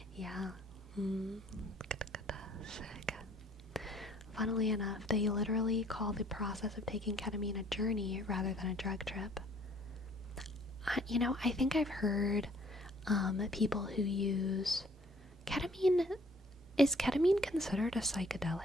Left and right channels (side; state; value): both; normal; correlation 0.59